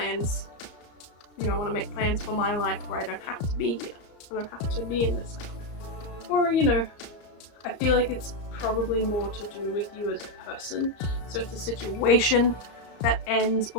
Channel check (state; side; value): late; right; 34 ms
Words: you know, I want to make plans for my life where I don't have to be here. I don't have to be in this cycle. Or, you know, I feel like it's probably more to do with you as a person. So it's a situation that ends